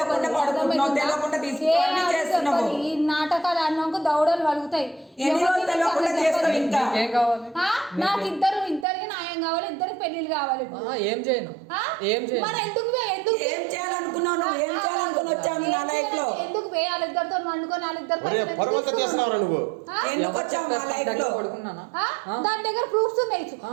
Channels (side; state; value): left; drops out; at 8.8 s